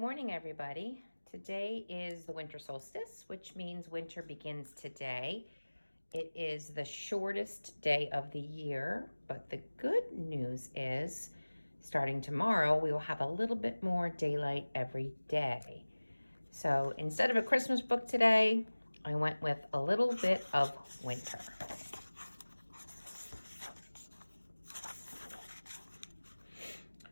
everybody. Today is the winter solstice, which means winter begins today. It is the shortest day of the year, but the good news is starting tomorrow, we will have a little bit more daylight every day. So instead of a Christmas book today, I went with a little bit of winter.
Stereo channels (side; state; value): both; inverted; correlation -1.00